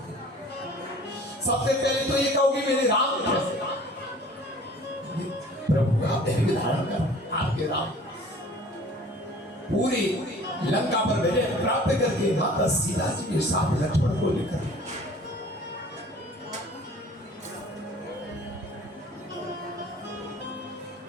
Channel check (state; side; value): normal; both; correlation 0.48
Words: सबसे पहले तो ये कहोगे मेरे राम कैसे। प्रभु आप धैर्य धारण कर, आपके राम पूरी लंका पर विजय प्राप्त करके माता सीता जी के साथ लक्ष्मण को लेकर